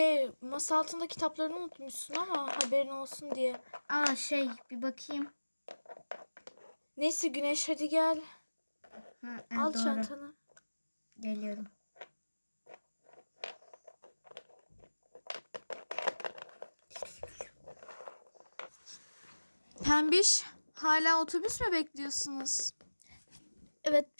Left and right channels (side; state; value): both; inverted; correlation -1.00